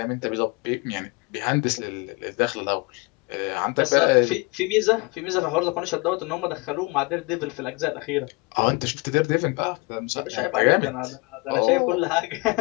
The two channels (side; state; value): right; quieter; 26.5 dB